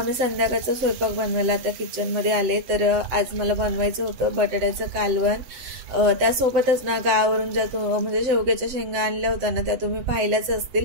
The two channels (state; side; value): late; left; 7.9 ms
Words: संध्याकाळचा स्वयंपाक बनवायला आता किचनमध्ये आले। तर आज मला बनवायचं होतं बटाट्याचं कालवण। त्यासोबतच ना गावावरून ज्या म्हणजे शेवग्याच्या शेंगा आणल्या होत्या ना, त्या तुम्ही पाहिल्याच असतील।